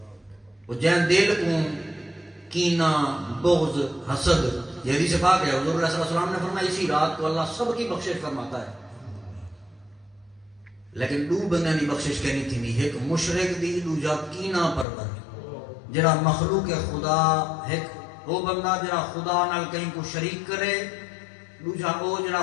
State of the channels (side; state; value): right; drops out; at 14.9 s